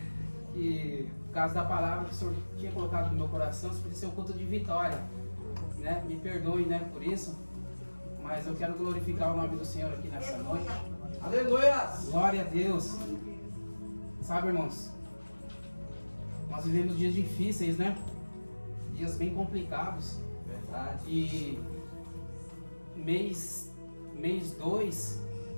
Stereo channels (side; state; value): both; inverted; correlation -1.00